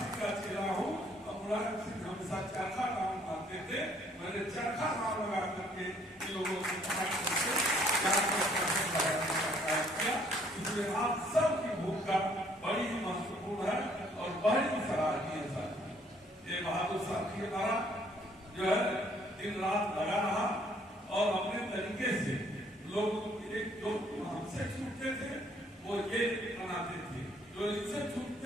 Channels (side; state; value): both; normal; correlation 0.63